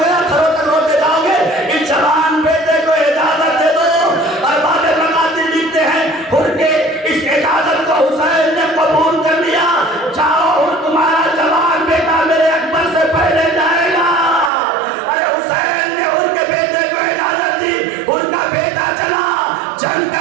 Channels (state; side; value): drops out; left; at 14.5 s